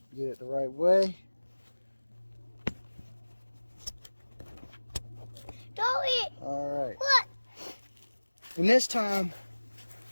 get it the right way. All right. What? And this time,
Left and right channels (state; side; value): inverted; both; correlation -1.00